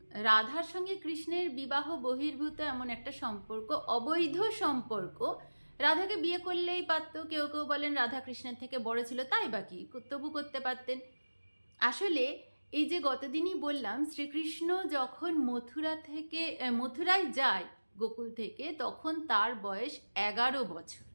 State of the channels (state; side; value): inverted; both; correlation -1.00